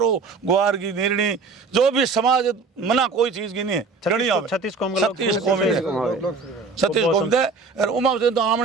ग्वार की निर्णी जो भी समाज मना कोई चीज की नहीं है 36 कौम दे और उमा से तो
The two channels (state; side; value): quieter; left; 4.4 dB